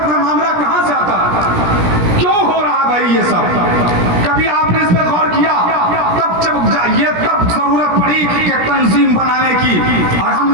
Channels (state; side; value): late; left; 17 ms